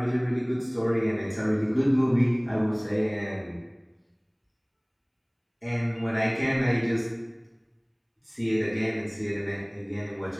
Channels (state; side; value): identical; both; correlation 1.00